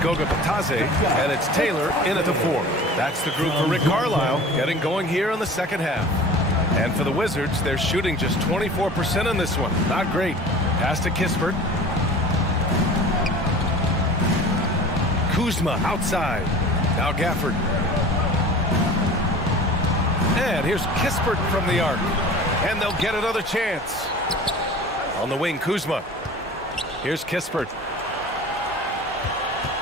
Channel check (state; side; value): normal; both; correlation 0.40